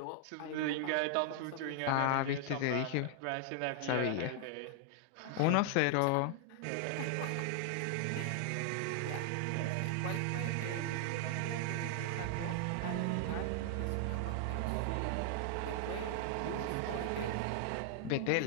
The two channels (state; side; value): different; both; correlation 0.00